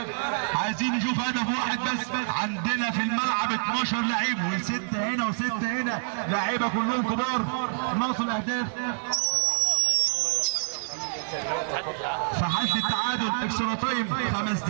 عايزين نشوف هدف واحد بس عندنا في الملعب 12 لعيب و6 هنا و6 هنا لعيبه كلهم كبار ناقص الاهداف في حالة التعادل اكسترا تايم 5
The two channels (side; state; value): left; silent; digital silence